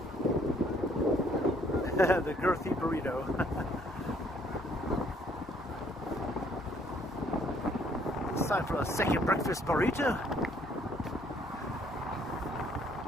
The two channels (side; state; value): both; normal; correlation 0.64